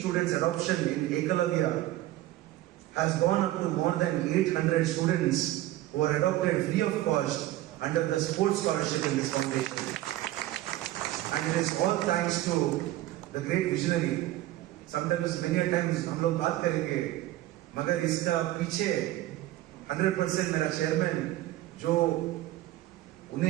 adoption in Ekalavya, has gone up to more than 800 students who are adopted free of cost under the sports scholarship in this foundation. And it is all thanks to the great visionary. Sometimes, many a times, हम लोग बात करेंगे, मगर इसका पीछे 100% मेरा chairman जो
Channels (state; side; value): quieter; left; 15.5 dB